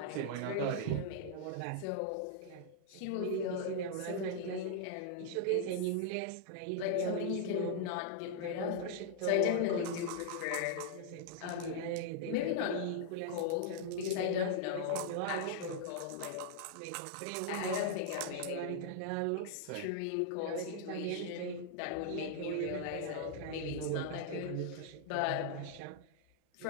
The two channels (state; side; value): different; both; correlation -0.01